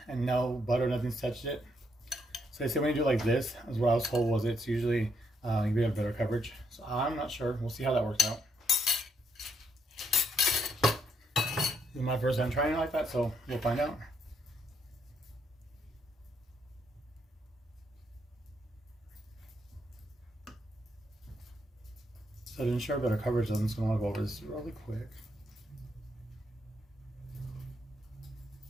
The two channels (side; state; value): both; normal; correlation 0.75